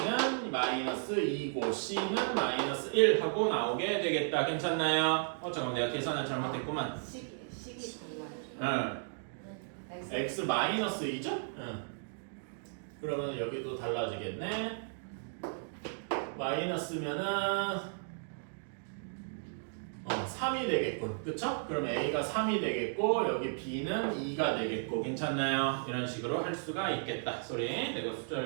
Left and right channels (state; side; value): silent; left; digital silence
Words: 마이너스 2고 c는 마이너스 1 하고 나오게 되겠다. 괜찮나요? 잠깐만, 내가 계산을 잘못했구만. 식이 달라요. x 마이너스 2죠? 그러면 여기도 달라지겠네. 마이너스면은 3이 되겠군. 그쵸? 그럼 a가 3이 되겠고 여기 b는 2가 되겠고. 괜찮나요? 이런 식으로 할 수가 있겠다. 소리, 내가